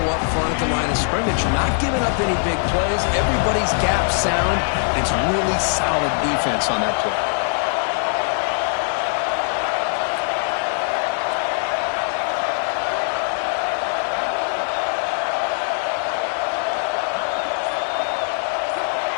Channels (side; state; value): right; silent; 61 dB below the other